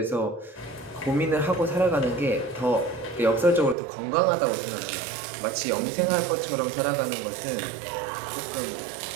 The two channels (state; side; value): drops out; left; at 3.8 s